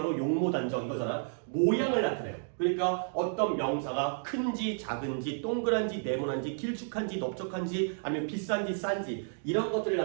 용모단정 이거잖아. 모양을 나타내요. 그러니까 어떤 명사가 큰지 작은지 동그란지 네모난지 길쭉한지 넓적한지 아니면 비싼지 싼지 이런 것들을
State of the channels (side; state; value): left; silent; digital silence